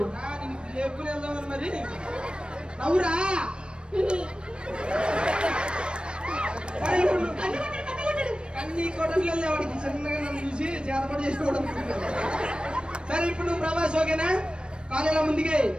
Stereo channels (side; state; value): left; late; 0.055 ms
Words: లేపుకుని వెళ్దామని మరి. నవ్వురా. కన్నీ కొట్టట్లేదు వాడికి. చిన్నగా నన్ను చూసి చేతపడి చేసుకోవడం. సరే ఇప్పుడు నువ్వు ప్రభాస్ ఓకేనా? కాలేలా ముందుకే